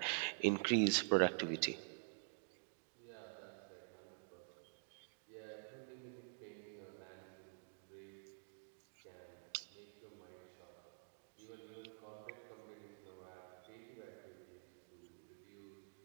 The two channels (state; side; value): silent; left; digital silence